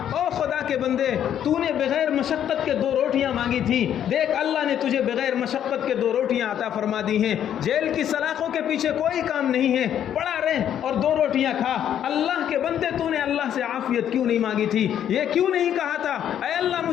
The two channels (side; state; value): right; quieter; 10.0 dB